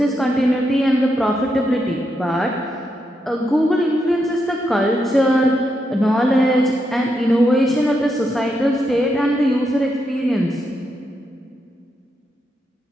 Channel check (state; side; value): normal; both; correlation 0.82